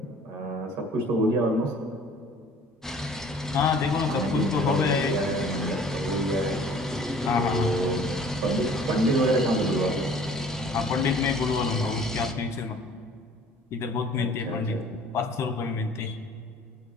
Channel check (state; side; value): normal; both; correlation 0.51